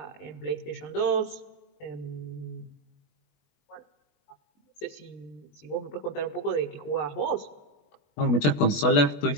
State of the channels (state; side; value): late; right; 20 ms